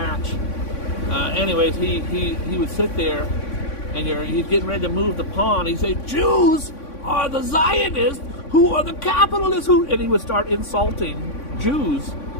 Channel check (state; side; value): late; right; 3.5 ms